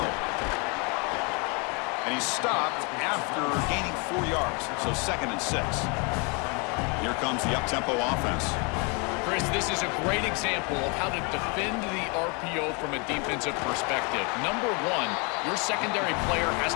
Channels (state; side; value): quieter; right; 32.5 dB